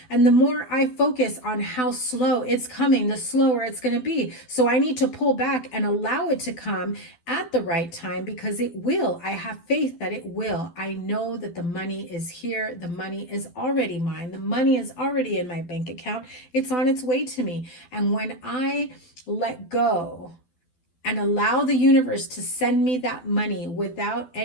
And the more I focus on how slow it's coming, the slower it's going to be. So I need to pull back and allow it to come at the right time, because it will. I have faith that it will. I know that the money is here. The money is already mine. The money is already in my bank account. It's on its way to me. And when I let go and allow the universe to send me that money without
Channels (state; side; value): late; right; 12 ms